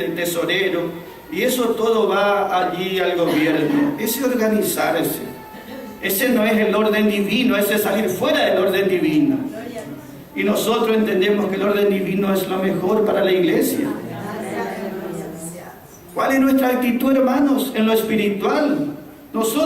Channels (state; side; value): identical; both; correlation 1.00